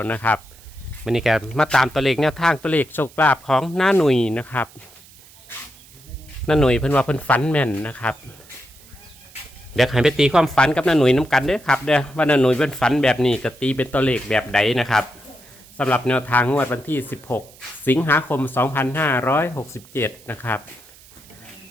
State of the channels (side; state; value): right; noise; hiss, 24 dB below the sound